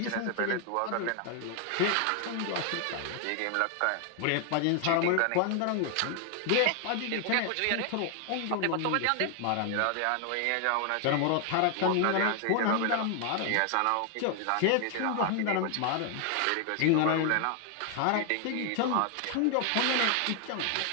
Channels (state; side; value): different; both; correlation 0.00